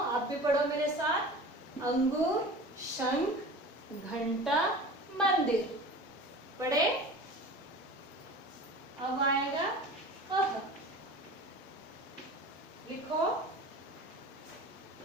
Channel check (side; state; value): both; normal; correlation 0.37